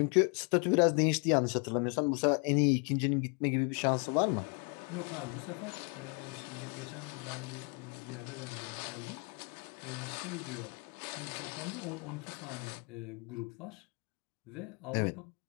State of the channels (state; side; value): quieter; right; 35.2 dB